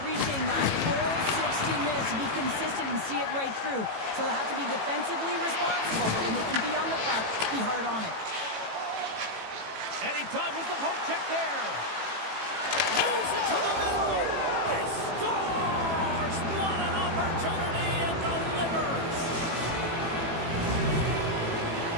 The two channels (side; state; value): left; late; 18 ms